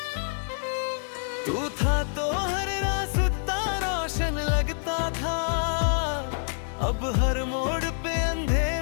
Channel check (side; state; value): right; silent; digital silence